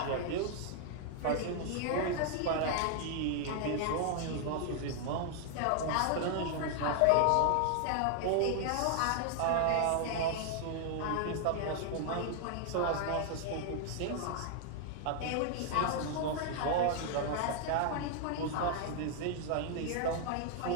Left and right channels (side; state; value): both; different; correlation 0.00